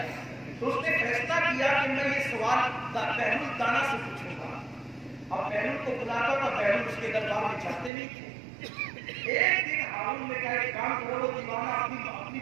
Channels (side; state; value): left; drops out; at 7.9 s